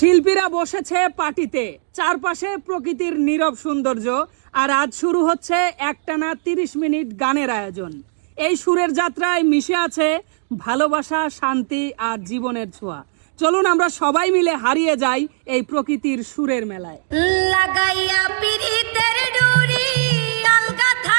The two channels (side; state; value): left; silent; digital silence